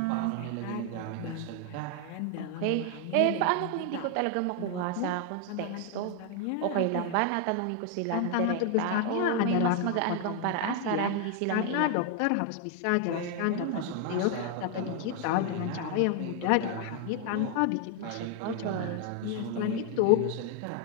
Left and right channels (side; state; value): both; different; correlation 0.00